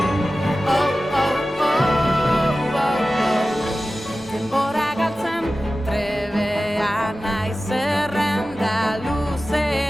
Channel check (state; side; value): normal; both; correlation 0.95